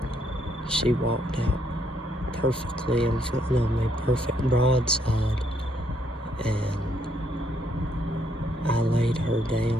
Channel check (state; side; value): normal; both; correlation 0.72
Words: she walked out perfectly in front of me, perfect broadside. And I laid her